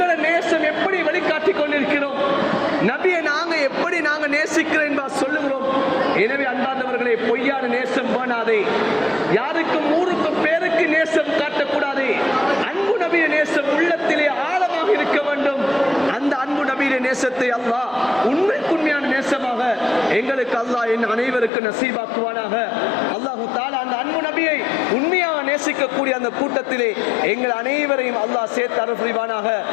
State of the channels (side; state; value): right; drops out; at 21.5 s